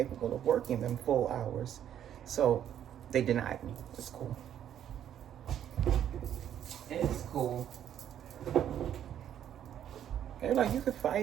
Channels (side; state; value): left; quieter; 10.2 dB